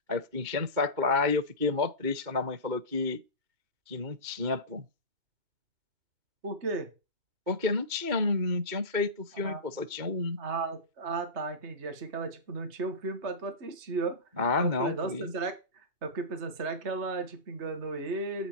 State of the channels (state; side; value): late; left; 2.2 ms